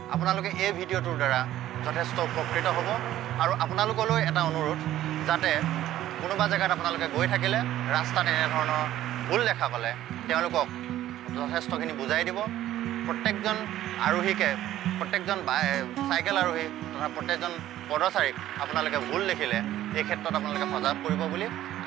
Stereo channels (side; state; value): left; quieter; 13.3 dB